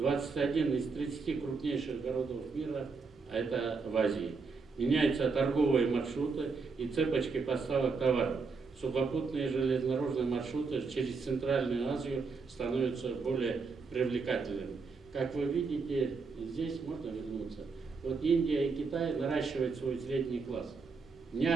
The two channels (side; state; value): left; quieter; 4.7 dB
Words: из 30 крупнейших городов мира, а это в Азии. Меняются торговые маршруты и цепочки поставок товаров. Сухопутные железнодорожные маршруты через Центральную Азию становятся более привлекательными. Как вы видите, здесь можно вернуться. Вот Индия и Китай наращивают свой средний класс. Не